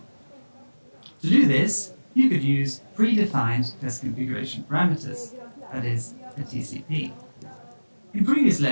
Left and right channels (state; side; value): inverted; both; correlation -1.00